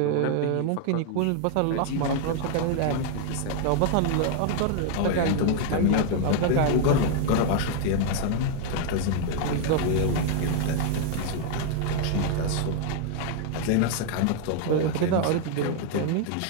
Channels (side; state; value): both; different; correlation 0.00